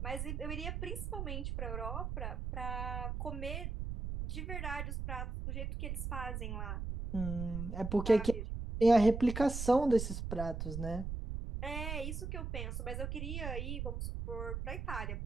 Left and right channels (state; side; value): noise; right; rumble, 4 dB below the sound